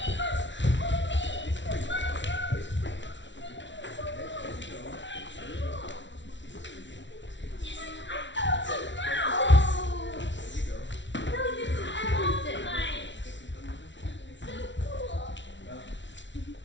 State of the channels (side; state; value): right; late; 0.54 ms